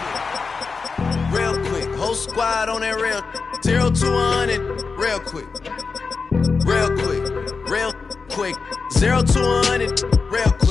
real quick. Whole squad on that real 0 to 100 real quick. Real quick. Real quick. 0 to 100 real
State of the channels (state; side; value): quieter; right; 4.7 dB